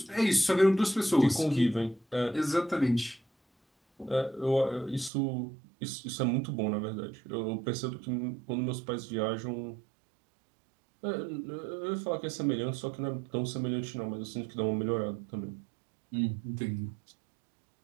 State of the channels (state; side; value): drops out; left; at 5.1 s